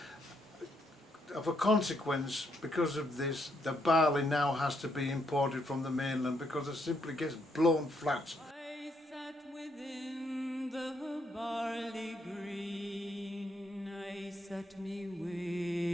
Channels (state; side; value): normal; both; correlation 0.75